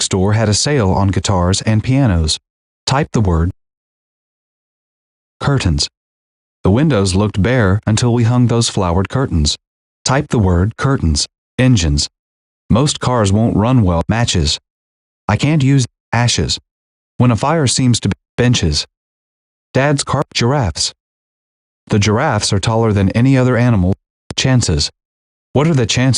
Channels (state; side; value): identical; both; correlation 1.00